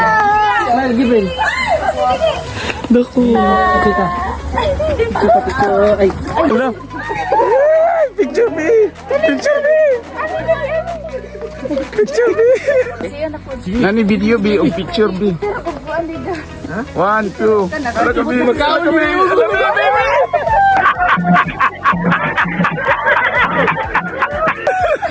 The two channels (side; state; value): both; identical; correlation 1.00